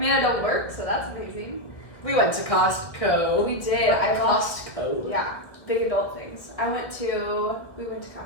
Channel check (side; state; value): right; late; 1.5 ms